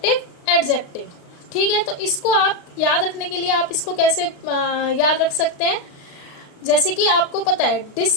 एडजेक्टिव। ठीक है, तो इसको आप याद रखने के लिए आप इसको कैसे याद रख सकते हैं। जैसे कि आपको पता है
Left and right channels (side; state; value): right; late; 35 ms